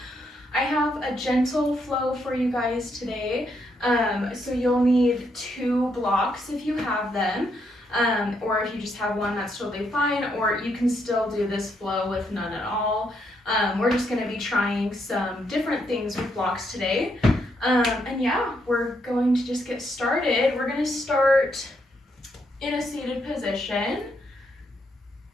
I have a gentle flow for you guys today. So you'll need 2 blocks if you have them. Or if you just have one, that's totally fine. Or you can still do this flow with none at all. We're just going to be trying some different things with blocks today. And yeah, we're going to just get started. We're going to start in a seated position.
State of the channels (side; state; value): both; normal; correlation 0.76